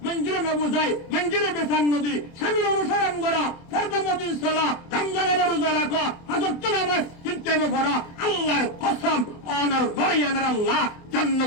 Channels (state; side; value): late; right; 24 ms